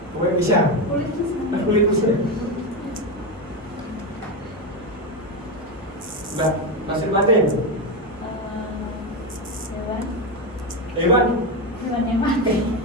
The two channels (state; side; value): normal; both; correlation 0.13